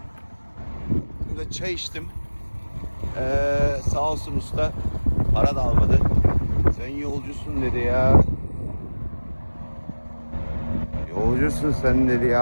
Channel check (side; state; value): both; inverted; correlation -1.00